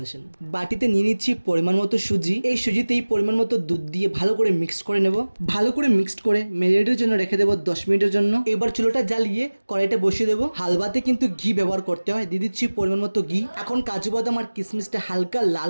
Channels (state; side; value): inverted; both; correlation -1.00